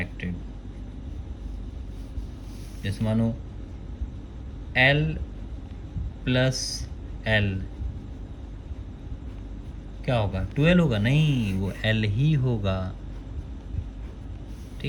जैसे मानो L प्लस L क्या होगा, 12 होगा, नहीं वो L ही होगा,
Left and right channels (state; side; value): identical; both; correlation 1.00